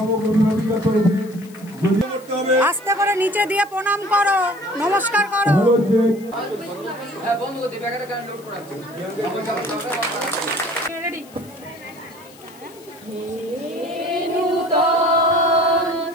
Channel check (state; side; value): noise; left; hiss, 24 dB below the sound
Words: অভিভাবিকা তরফে। আস্তে করে নিচে দিয়ে প্রণাম করো, নমস্কার করো।